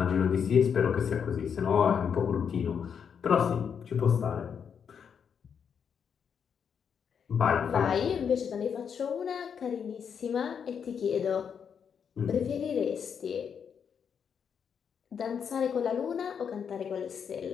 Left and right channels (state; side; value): quieter; right; 7.2 dB